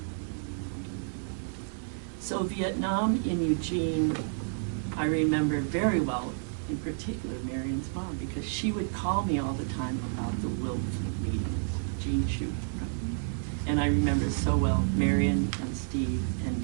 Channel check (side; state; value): left; silent; 58 dB below the other